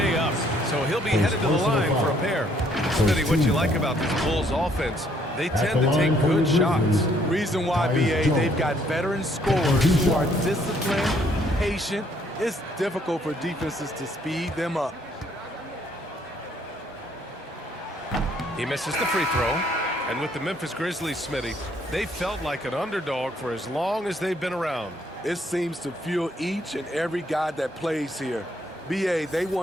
up. So he'll be headed to the line for a pair. Smitty, what you like about this Bulls offense, they tend to take good shots. Reason why, BA, they've got veteran scorers who are disciplined, patient. It's difficult for defenses to speed them up. He misses the free throw. And with the Memphis Grizzlies, Smitty, they felt like an underdog for as long as they've been around. It seems to fuel each and every guy that plays here. BA, they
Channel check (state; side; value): normal; both; correlation 0.66